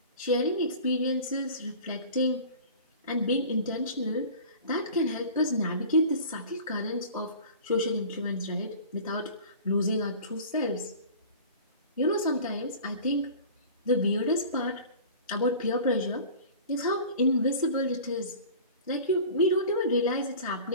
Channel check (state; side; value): inverted; both; correlation -0.41